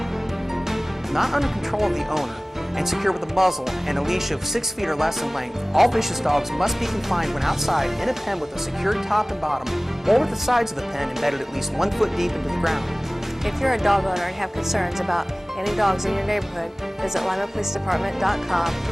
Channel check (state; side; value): normal; both; correlation 0.98